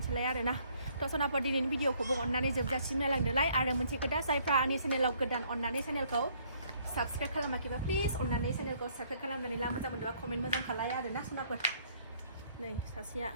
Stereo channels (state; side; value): inverted; both; correlation -0.64